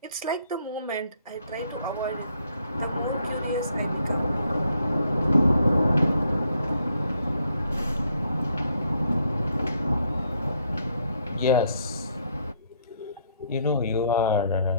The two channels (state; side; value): inverted; both; correlation -0.70